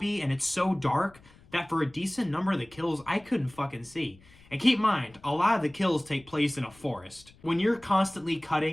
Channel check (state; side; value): noise; left; rumble, 26 dB below the sound